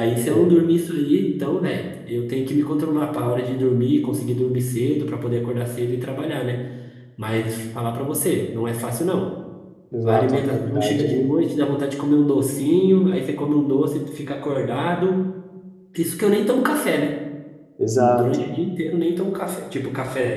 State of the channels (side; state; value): both; identical; correlation 1.00